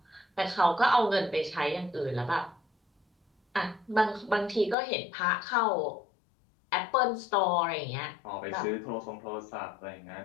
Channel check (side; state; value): right; drops out; at 4.8 s